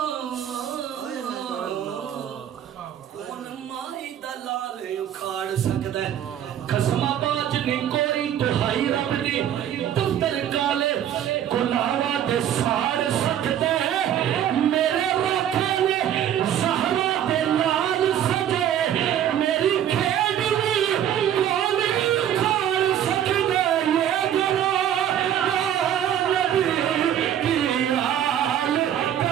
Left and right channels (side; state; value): left; quieter; 10.3 dB